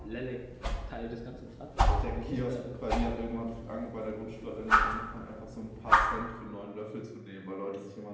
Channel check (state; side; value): identical; both; correlation 1.00